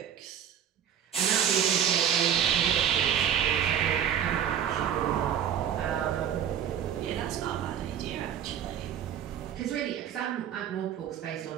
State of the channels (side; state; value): left; quieter; 9.2 dB